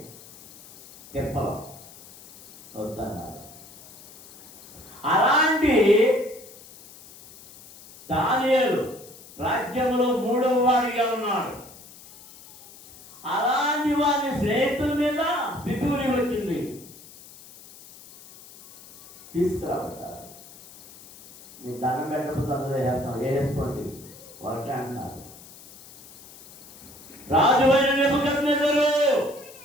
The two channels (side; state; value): left; noise; hiss, 20 dB below the sound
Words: తిప్పలు వద్దన్నారు. అలాంటి దానియేలు రాజ్యంలో 3వ వాడిగా ఉన్నాడు. అలాంటి వారి స్నేహితుల మీద పితూరి వచ్చింది. తీసుకురాబట్టారు. మీకు దండం పెట్టకపోతే అందరూ వేస్తాం, వేసుకోండి వాళ్ళకే అంటున్నారు. రాజువైన నెబుకద్నెజరు,